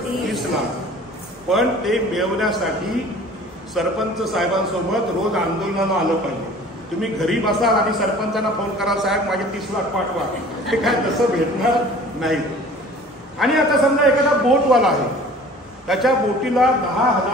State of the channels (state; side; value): normal; both; correlation 0.46